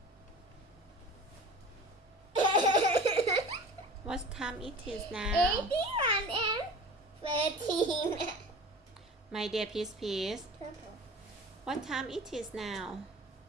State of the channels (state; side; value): normal; both; correlation 0.39